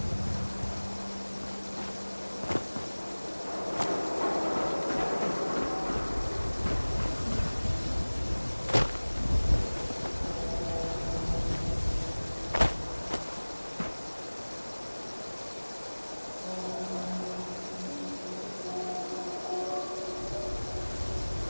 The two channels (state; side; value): inverted; both; correlation -1.00